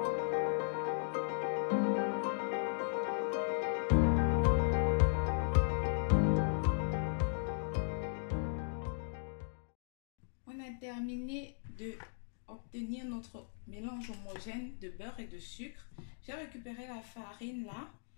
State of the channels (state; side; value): silent; right; digital silence